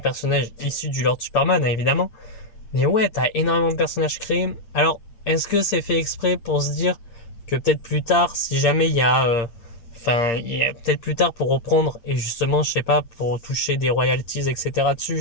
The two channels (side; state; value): right; late; 8.6 ms